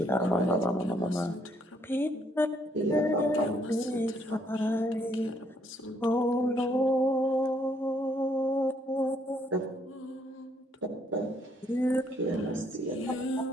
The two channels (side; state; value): both; normal; correlation 0.70